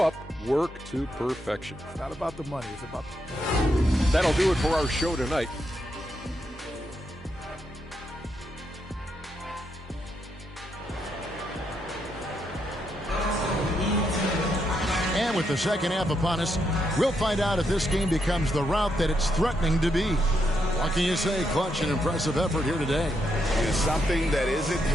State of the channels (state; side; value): normal; both; correlation 0.80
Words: work to perfection. It's not about the money. It's about That'll do it for our show tonight. And with the second half upon us, we'll find out if this game becomes the route that it's threatening to be. What can you say? Clutch and impressive effort here today. It's something that isn't